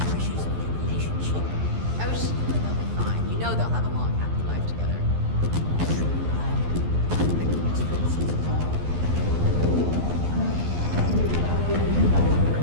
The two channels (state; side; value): late; left; 12 ms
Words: pressures of their relationship. I was just sure they'll be fine. You know they'll have a long, happy life together.